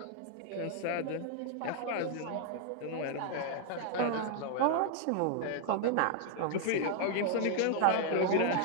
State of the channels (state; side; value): different; both; correlation 0.00